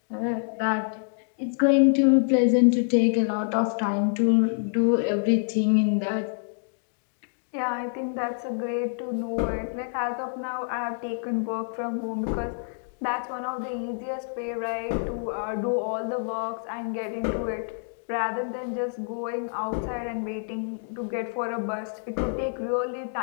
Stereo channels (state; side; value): silent; right; digital silence